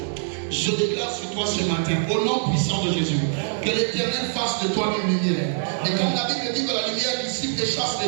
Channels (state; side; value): silent; left; 59 dB below the other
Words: je déclare sur toi ce matin, au nom puissant de Jésus, que l'Éternel fasse de toi une lumière. Et comme la Bible dit que la lumière dissipe et chasse